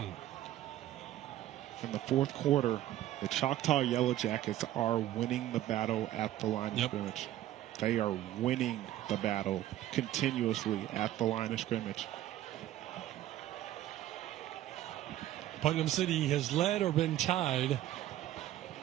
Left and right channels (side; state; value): left; quieter; 13.5 dB